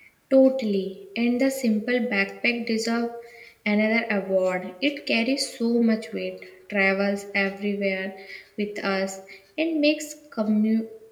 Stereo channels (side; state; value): both; identical; correlation 1.00